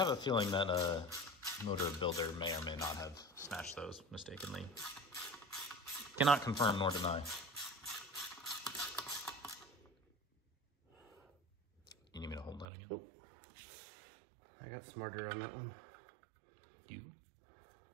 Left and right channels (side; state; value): left; drops out; at 12.7 s